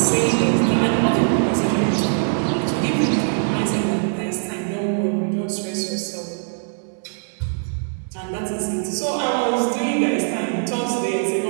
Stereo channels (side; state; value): left; silent; digital silence